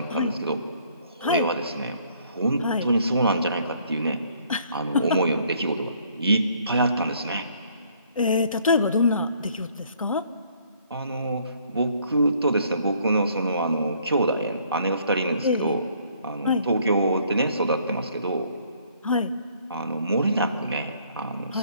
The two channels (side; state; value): both; inverted; correlation -0.62